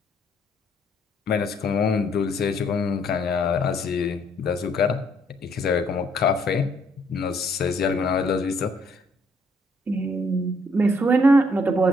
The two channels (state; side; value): normal; both; correlation 0.67